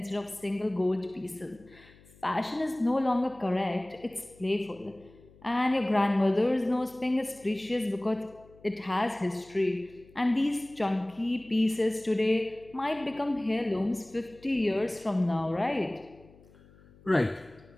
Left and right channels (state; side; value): noise; left; hum, 25 dB below the sound